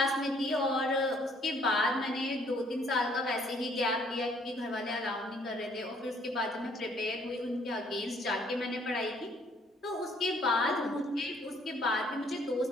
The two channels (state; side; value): normal; both; correlation 0.63